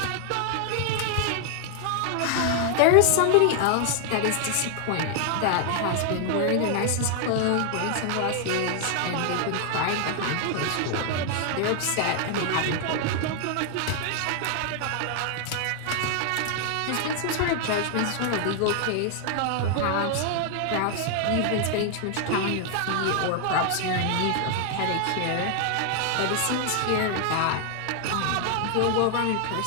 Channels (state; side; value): different; both; correlation 0.00